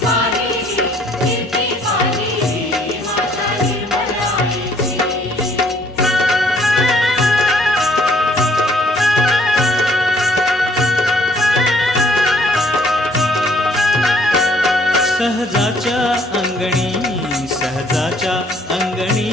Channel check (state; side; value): normal; both; correlation 0.62